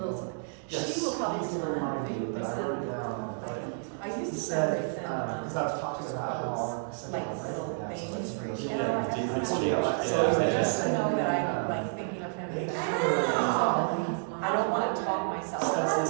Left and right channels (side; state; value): left; silent; digital silence